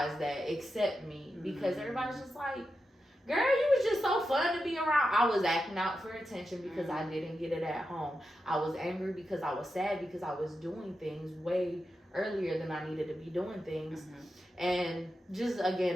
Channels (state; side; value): normal; both; correlation 0.89